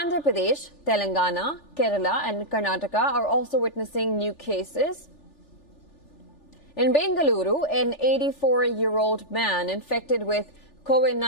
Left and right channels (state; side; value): late; right; 3.4 ms